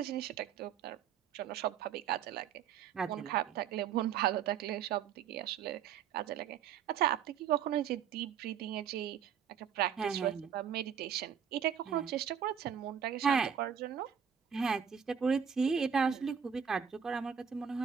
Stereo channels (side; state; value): left; quieter; 7.9 dB